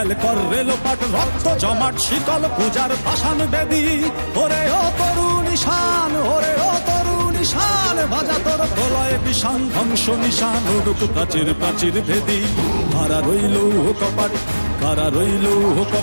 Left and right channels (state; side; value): inverted; both; correlation -1.00